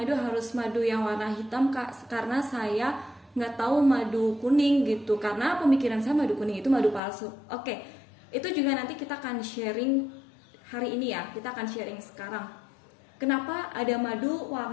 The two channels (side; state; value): right; drops out; at 7.0 s